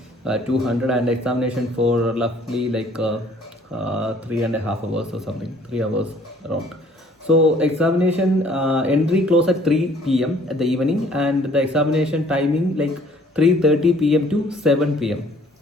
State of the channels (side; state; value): both; normal; correlation 0.58